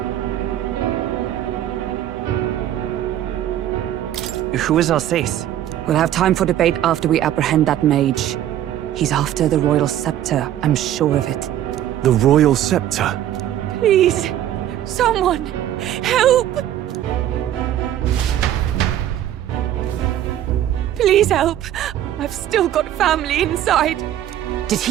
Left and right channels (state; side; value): quieter; left; 11.9 dB